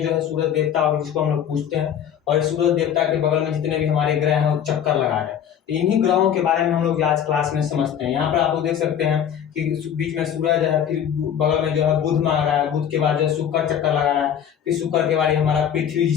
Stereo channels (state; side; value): quieter; right; 9.1 dB